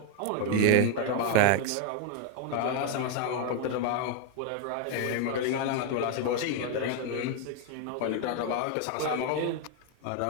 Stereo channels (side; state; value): both; different; correlation 0.01